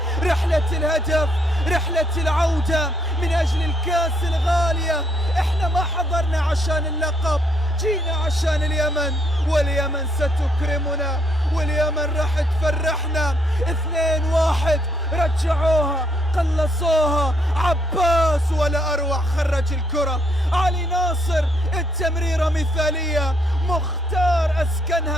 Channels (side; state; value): both; normal; correlation 0.72